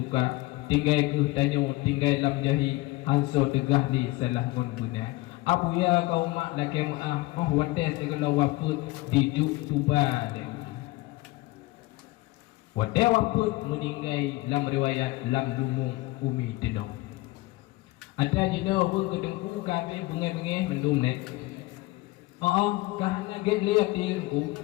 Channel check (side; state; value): right; quieter; 20.2 dB